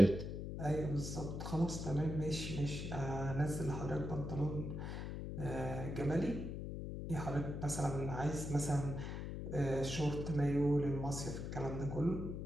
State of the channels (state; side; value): noise; left; hum, 5 dB below the sound